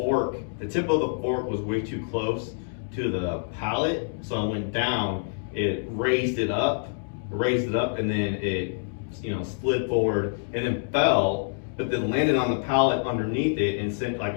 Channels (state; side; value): silent; right; digital silence